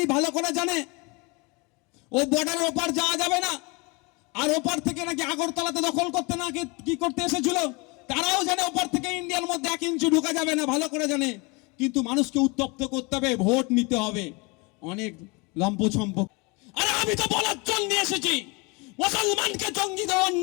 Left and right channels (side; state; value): right; quieter; 28.2 dB